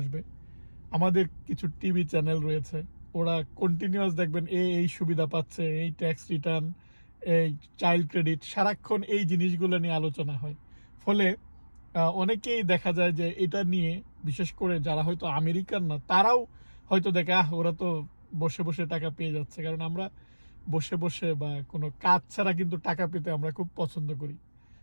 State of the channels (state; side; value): inverted; both; correlation -1.00